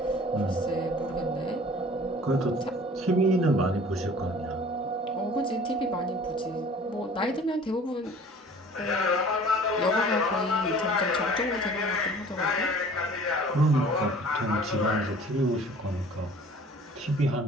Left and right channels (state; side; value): normal; both; correlation 0.48